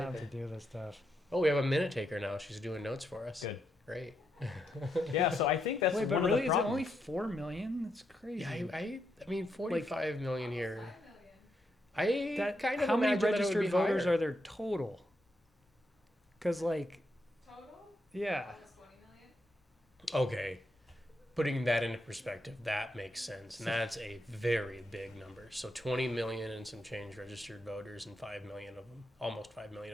have to do this stuff. Oh, we have a minute taker now. She's doing notes for us. Good. Great. Yeah, so I think that's Wait, but one really, of the is it problems. only 4 million? That's crazy. Yeah, I mean, 45 million here. 5 million. I That, kind of how many imagine that it would registered be voters higher. are there total? Because, like, Total? yeah. Almost 20 million. Okay. Putting that into perspective, that makes sense. And that's a very big number. So 20 million and some change registered voters, and 5 million of them, almost 5 million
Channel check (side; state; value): both; normal; correlation 0.81